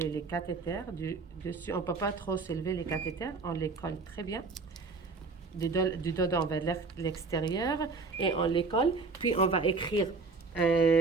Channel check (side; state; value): left; quieter; 4.1 dB